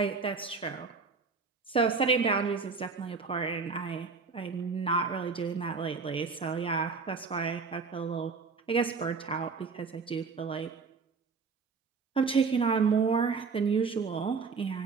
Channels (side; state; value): left; quieter; 4.9 dB